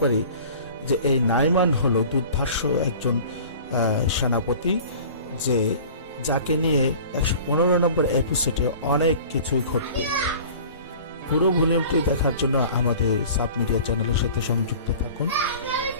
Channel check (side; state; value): both; inverted; correlation -0.43